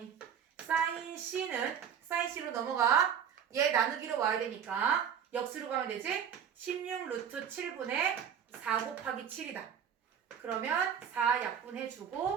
사인 C로 넘어가. 얘 나누기로 와야 되니까 역수로 가면 되지? 16 루트 7분의 4 곱하기 7이다. 그러면 4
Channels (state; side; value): quieter; left; 8.2 dB